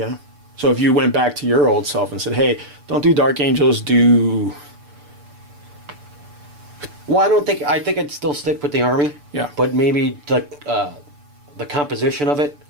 So if you went back to your old self and said, hey, don't do Dark Angels, do... Well, I think I'd still stick with the army. Yeah. But maybe the composition of it.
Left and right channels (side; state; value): left; late; 6.8 ms